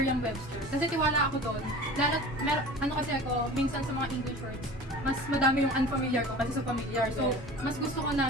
Kasi tiwala ako doon. Lalo, kasi ako, minsan sa mga English words, mas madami yung unfamiliar ko kasi sa familiar. So, mas gusto ko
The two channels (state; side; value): normal; both; correlation 0.39